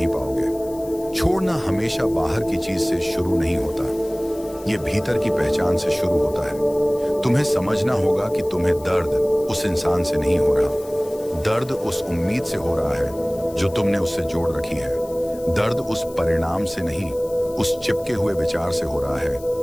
पाओगे। छोड़ना हमेशा बाहर की चीज से शुरू नहीं होता, ये भीतर की पहचान से शुरू होता है। तुम्हें समझना होगा कि तुम्हें दर्द उस इंसान से नहीं हो रहा, दर्द उस उम्मीद से हो रहा है जो तुमने उससे जोड़ रखी है। दर्द उस परिणाम से नहीं, उस चिपके हुए विचार से हो रहा है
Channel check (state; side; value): noise; left; hiss, 21 dB below the sound